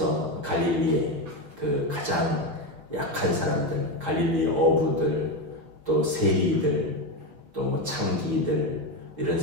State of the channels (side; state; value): left; late; 5.8 ms